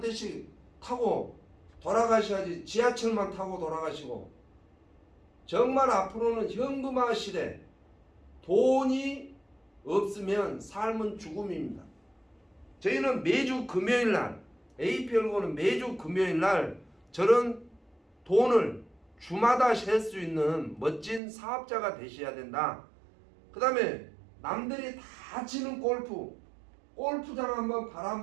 대씩 타고 돌아가셔야지 지하철만 타고 돌아가시고. 정말 앞으로는 현금화 시대, 돈이 없으면 삶은 죽음입니다. 저희는 매주 금요일날, APL고는 매주 금요일날 저런 돈을 주마다 셀 수 있는 멋진 사업자가 되셔야 된다. 그 다음에 남들이 다 치는 골프장 한번 발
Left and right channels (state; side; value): drops out; left; at 21.2 s